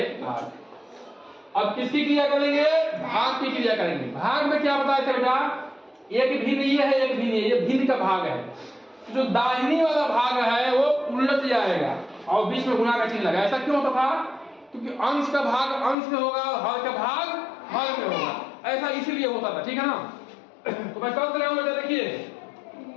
अब किसकी क्रिया करेंगे? भाग की क्रिया करेंगे। भाग में क्या बताया था बेटा? एक भिन्न ये है, एक भिन्न ये भिन्न का भाग है। जो दाहिनी वाला भाग है वो उलट जाएगा और बीच में गुणा का चिन्ह लगा। ऐसा क्यों होता था? क्योंकि अंश का भाग अंश में होगा, हर का भाग हर में होगा, ऐसा इसीलिए होता था, ठीक है ना। तो मैं कर रहा हूं बेटा, देखिए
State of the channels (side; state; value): right; drops out; at 16.0 s